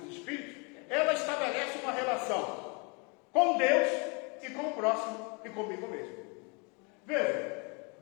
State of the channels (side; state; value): right; quieter; 32.0 dB